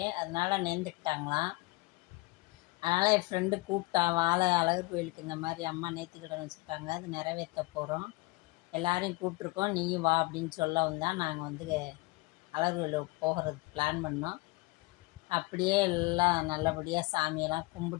அதனால நேர்ந்துக்கிட்டாங்களாம். அதனால் என் ஃப்ரெண்டு கூப்பிட்டா, வாழை அழகர் கோயிலுக்கு இந்த மாதிரி அம்மா நேர்த்திக்கடன் வச்சுருக்காங்க, அது நிறைவேற்ற போகிறோம், எல்லாரையும் கூப்பிட்ருக்கோம், நீயும் வா அப்படின்னு சொல்லவும் தான் நாங்கள் வந்து அழகர் கோயிலுக்கு போகிறதுக்கு பிளான் பண்ணோம். அப்படியே எல்லாம் நல்லபடியாக சாமியெல்லாம்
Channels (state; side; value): quieter; right; 23.7 dB